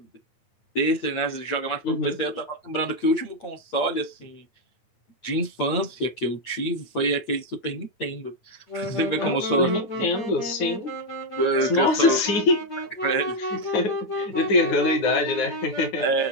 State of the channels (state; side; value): late; right; 8.7 ms